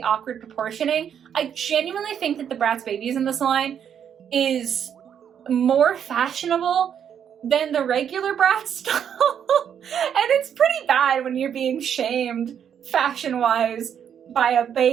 awkward proportioning, I genuinely think that the Bratz babies in this line is more fashionable than the regular Bratz doll. And it's pretty bad when you're being shamed fashion-wise by a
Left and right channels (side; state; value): left; quieter; 8.5 dB